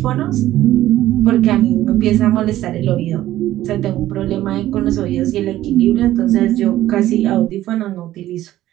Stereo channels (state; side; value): quieter; left; 14.1 dB